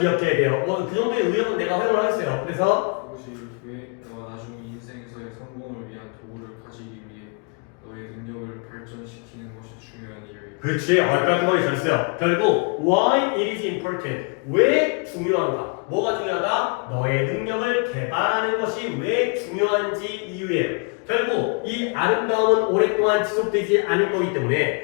돼요. 그 정도의 의욕은 내가 허용을 하겠어요. 그래서 그것이 왜 너가 나중 인생에서의 성공을 위한 도구를 가지기 위해 너의 능력을 발전시키는 것이 중요한 이유야. 그렇지. 깔끔하게 잘했어요. 결국 why it is important. 왜 중요한가? 뭐가 중요하다? 너의 능력을 개발하는 것이 왜 중요한지 이유예요. 결국 이 아름다움은 오랫동안 지속되지 않을 거기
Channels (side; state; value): right; quieter; 34.5 dB